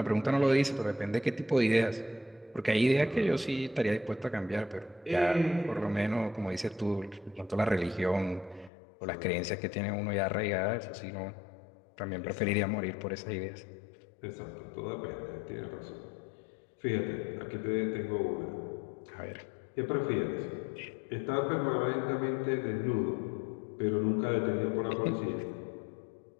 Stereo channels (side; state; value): right; drops out; at 8.7 s